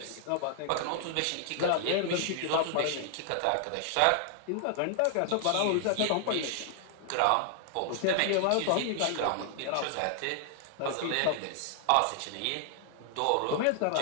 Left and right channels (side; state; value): both; different; correlation 0.00